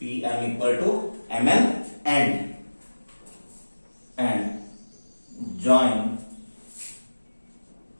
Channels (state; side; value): inverted; both; correlation -1.00